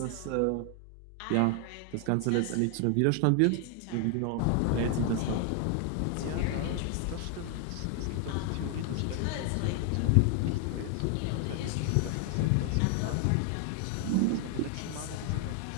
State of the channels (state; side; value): different; both; correlation 0.00